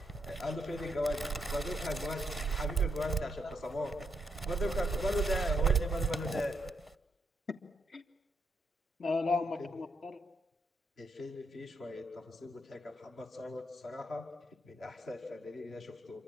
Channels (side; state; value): both; normal; correlation 0.79